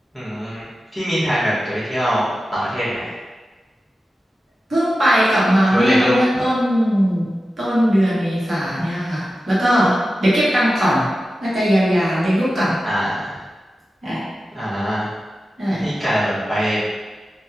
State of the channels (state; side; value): normal; both; correlation 0.93